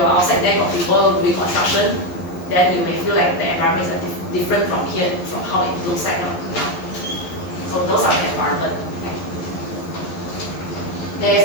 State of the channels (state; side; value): late; right; 11 ms